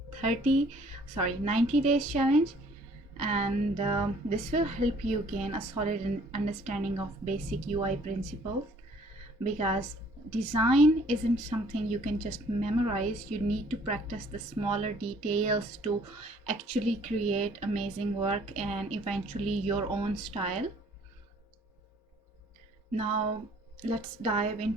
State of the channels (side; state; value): both; normal; correlation 0.58